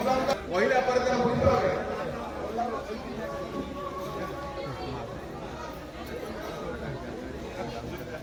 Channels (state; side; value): identical; both; correlation 1.00